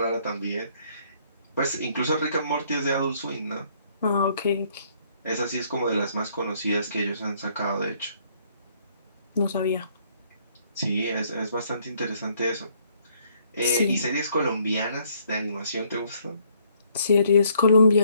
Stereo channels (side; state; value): both; inverted; correlation -0.67